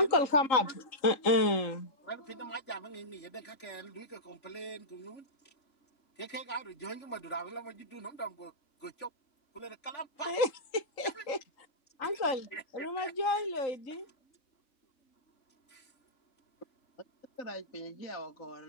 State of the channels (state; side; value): late; right; 3.8 ms